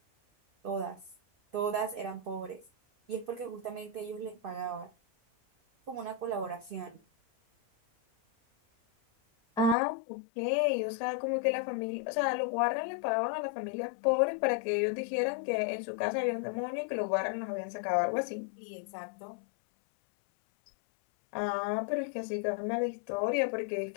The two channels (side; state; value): right; drops out; at 9.8 s